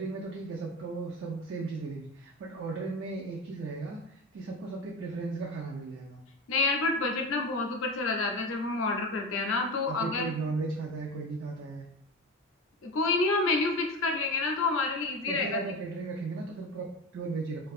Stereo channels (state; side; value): normal; both; correlation 0.25